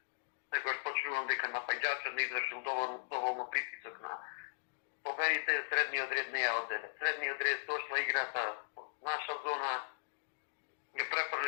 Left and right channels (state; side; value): silent; right; digital silence